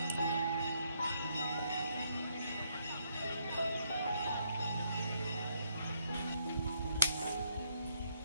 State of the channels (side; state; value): both; inverted; correlation -0.73